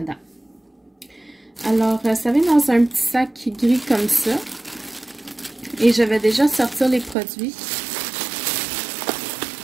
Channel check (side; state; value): left; drops out; at 7.2 s